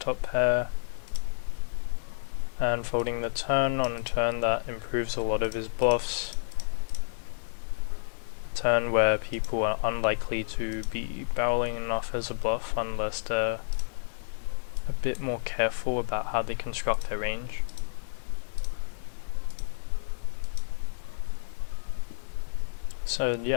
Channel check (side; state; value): right; silent; digital silence